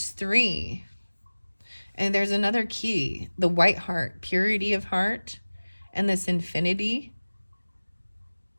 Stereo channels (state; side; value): inverted; both; correlation -1.00